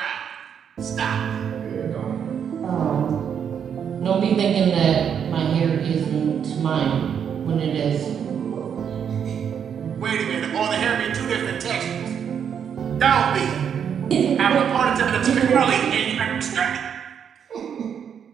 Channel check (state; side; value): quieter; left; 7.9 dB